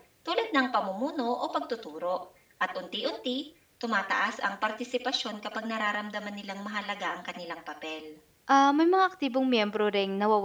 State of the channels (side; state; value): both; identical; correlation 1.00